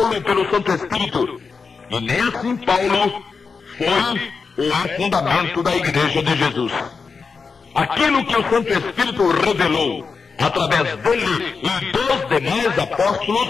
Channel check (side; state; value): right; quieter; 5.0 dB